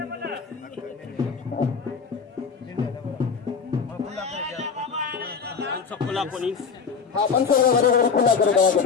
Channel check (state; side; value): quieter; right; 5.8 dB